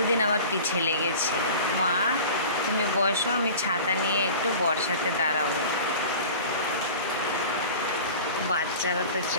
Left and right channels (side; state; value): both; inverted; correlation -0.38